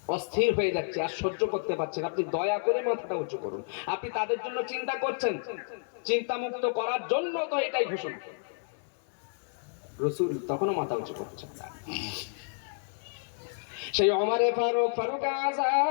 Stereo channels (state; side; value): silent; right; digital silence